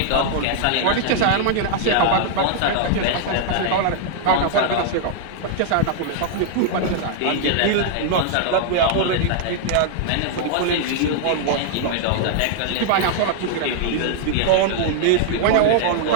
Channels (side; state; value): both; different; correlation -0.01